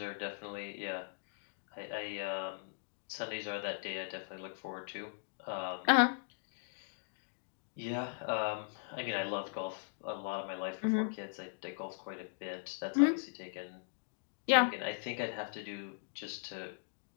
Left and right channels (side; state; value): right; silent; digital silence